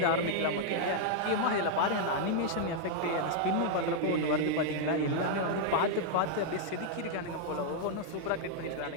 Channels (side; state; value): both; different; correlation -0.01